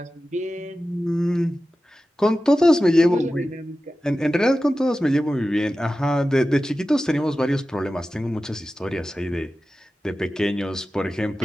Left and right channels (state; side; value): normal; both; correlation 0.94